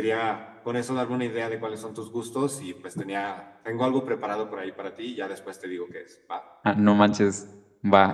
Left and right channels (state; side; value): identical; both; correlation 1.00